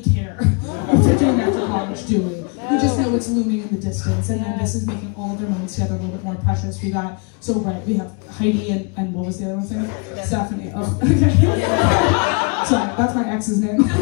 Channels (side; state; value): right; quieter; 34.5 dB